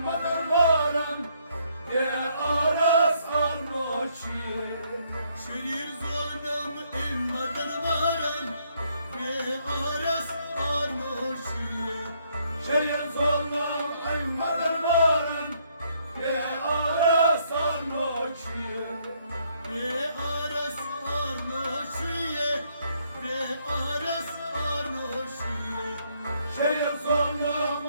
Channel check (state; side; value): inverted; both; correlation -0.70